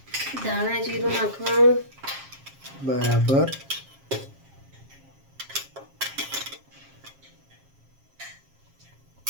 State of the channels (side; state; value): left; late; 7.4 ms